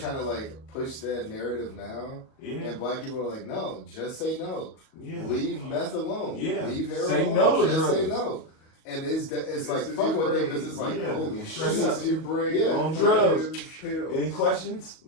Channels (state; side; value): late; right; 38 ms